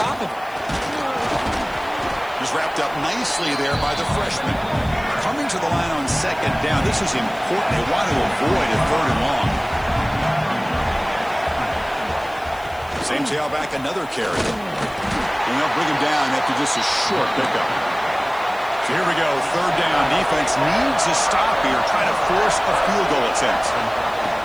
of it. Just wrapped up nicely there by the freshman. Coming to the line on second down. This is important. They want to avoid a third and long. Same tailback, another carry. And they'll bring him down after just a short pickup. So here we go, third down. Defense needs a stop here, trying to force a field goal attempt.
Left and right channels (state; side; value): noise; left; hiss, 25 dB below the sound